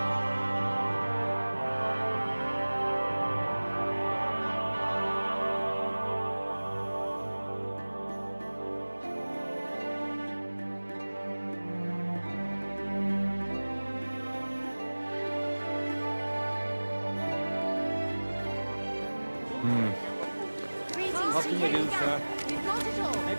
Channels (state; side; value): inverted; both; correlation -1.00